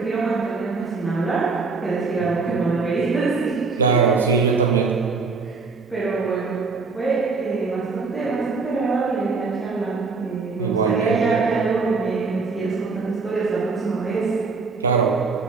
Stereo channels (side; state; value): left; quieter; 4.4 dB